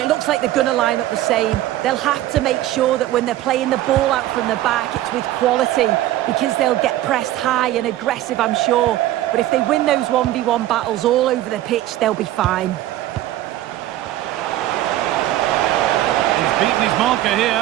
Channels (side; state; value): left; quieter; 14.4 dB